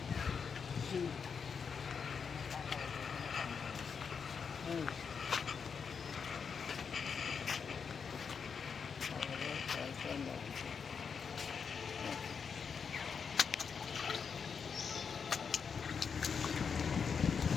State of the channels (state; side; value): quieter; right; 6.2 dB